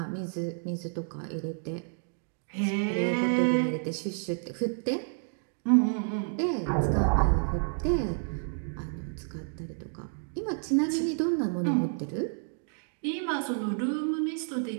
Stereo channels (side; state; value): left; silent; digital silence